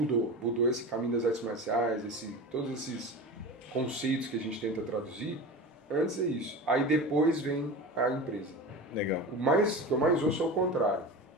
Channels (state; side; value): normal; both; correlation 0.30